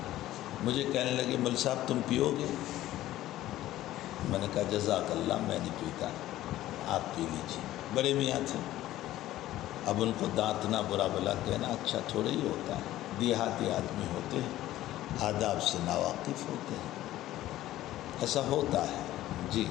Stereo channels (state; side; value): quieter; right; 14.7 dB